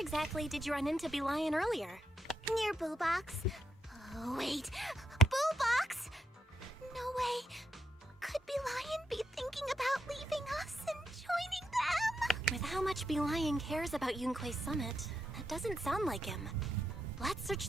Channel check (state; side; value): normal; both; correlation 0.82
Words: did you run into Bee Lion earlier? Near Boo Box. Oh, wait. Boo Box? No way. Could Bee Lion be thinking about leaving us and joining them? With how much Bee Lion cares about Yunque's summit, that doesn't sound like him. Let's search